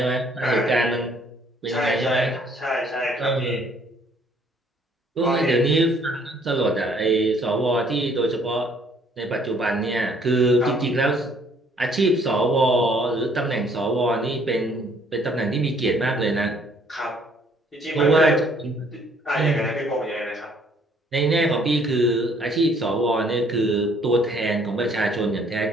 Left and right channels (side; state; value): both; normal; correlation 0.62